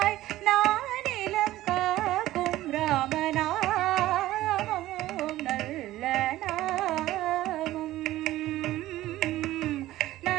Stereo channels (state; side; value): quieter; left; 15.5 dB